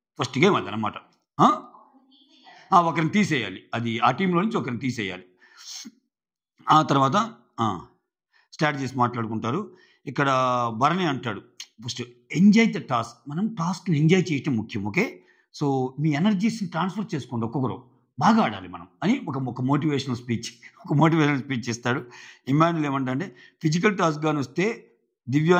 ఫస్ట్ గేమ్ అది అనమాట. ఒకరిని తీసేయాలి, అది ఆ టీంలో నుంచి ఒకరిని తీసేయాలి. ఆ తర్వాత స్ట్రాటజీస్ మాట్లాడుకుంటారు. ఇక్కడ భరణి అంటాడు, ఫస్ట్ ఎంజాయ్ ద టాస్క్, మనం టాస్క్ని ఎంజాయ్ చేయటం ముఖ్యం. ఓకే, సో మీ ఎనర్జీస్ని ట్రాన్స్ఫర్ చేసుకోండి, ఒక్కొక్కరు బాగా ఆడాలి మనం అని ఒక మోటివేషనల్ స్పీచ్ ఇస్తాడు. ఇమాన్యుల్ ఏమంటే ఫిజికల్ టాస్క్ కానీ వస్తే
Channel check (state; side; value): identical; both; correlation 1.00